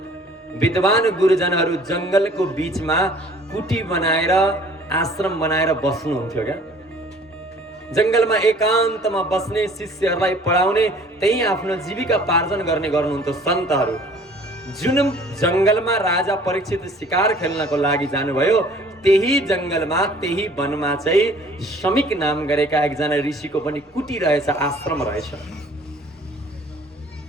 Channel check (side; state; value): both; normal; correlation 0.52